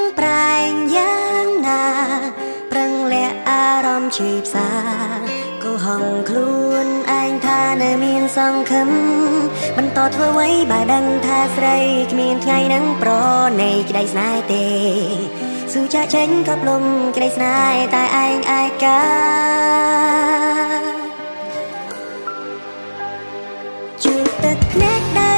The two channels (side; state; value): both; inverted; correlation -1.00